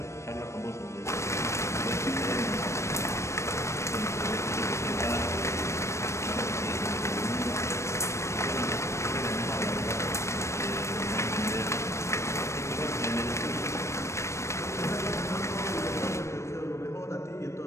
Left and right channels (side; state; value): right; late; 0.13 ms